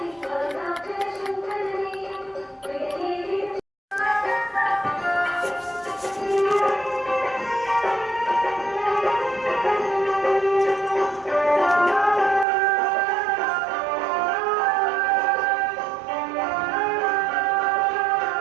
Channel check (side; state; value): left; drops out; at 12.5 s